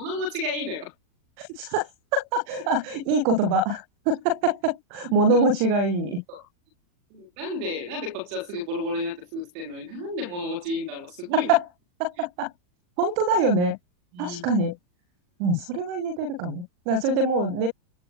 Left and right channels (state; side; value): late; left; 40 ms